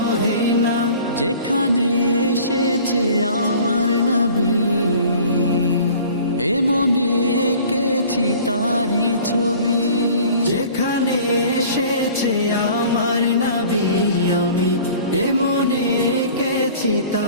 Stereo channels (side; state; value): both; inverted; correlation -0.47